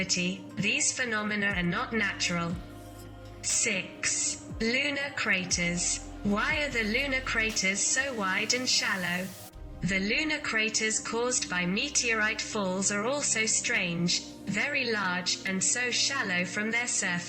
these phenomena are not natural. 6. Lunar craters. Why are the lunar craters so wide and shallow? The lunar craters caused by meteorite falls are also strange, very large, and so shallow from their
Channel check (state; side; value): identical; both; correlation 1.00